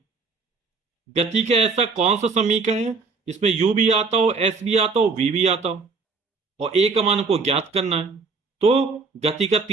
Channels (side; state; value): left; quieter; 4.5 dB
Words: गति का ऐसा कौन सा समीकरण है इसमें यू भी आता हो, एस भी आता हो, वी भी आता हो, और ए का मान को ज्ञात करना है। तो गति का